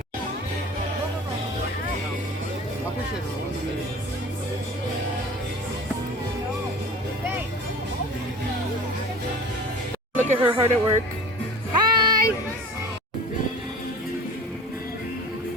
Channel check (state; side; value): normal; both; correlation 0.40